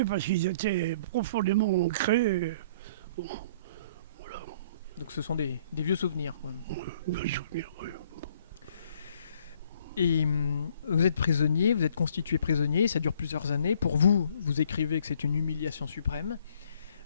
parce qu'ils étaient profondément ancrés. Bon, voilà. Donc ce sont des vieux souvenirs, quand même. Vieux souvenirs, oui. Et vous êtes prisonnier, vous êtes constitué prisonnier, ça dure plusieurs années. Pour vous, vous écrivez que c'est une humiliation suprême.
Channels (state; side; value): inverted; both; correlation -0.60